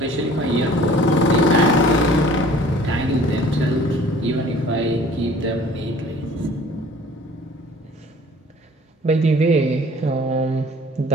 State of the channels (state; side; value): normal; both; correlation 0.50